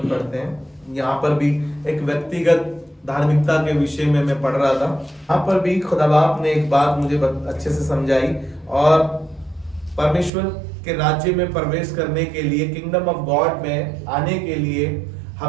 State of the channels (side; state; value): left; drops out; at 10.3 s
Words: पढ़ते हैं। यहाँ पर भी एक व्यक्तिगत धार्मिकता के विषय में मैं पढ़ रहा था। यहाँ पर भी खुदा बाप ने एक बात मुझे अच्छे से समझाई, और परमेश्वर के राज्य में प्रवेश करने के लिए, किंगडम ऑफ गॉड में आने के लिए